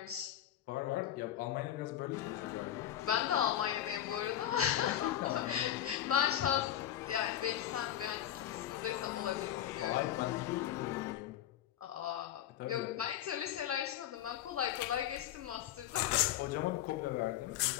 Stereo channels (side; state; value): right; quieter; 11.7 dB